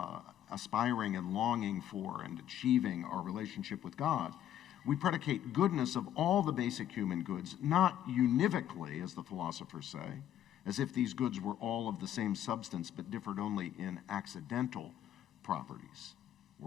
aspiring and longing for and achieving our relationship with God. We predicate goodness of all the basic human goods, not univocally, as the philosophers say, as if these goods were all of the same substance but differed only in accidental properties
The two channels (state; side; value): quieter; right; 11.1 dB